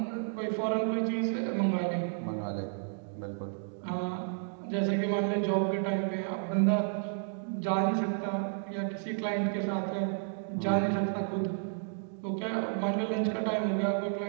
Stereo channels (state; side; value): silent; left; digital silence